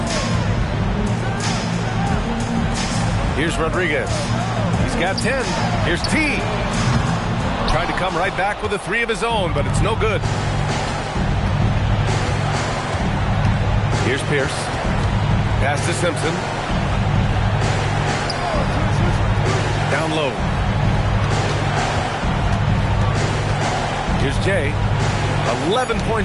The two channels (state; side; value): identical; both; correlation 1.00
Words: Here's Rodriguez. He's got 10. Here's T. Trying to come right back with a 3 of his own, but it's no good. Here's Pierce. Pass to Simpson. Down low. Here's Jay. 11